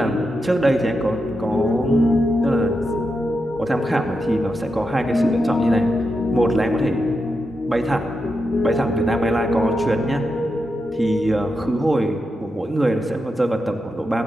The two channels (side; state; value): both; normal; correlation 0.87